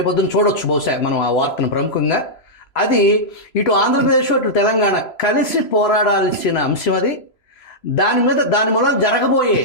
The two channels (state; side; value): late; right; 3.0 ms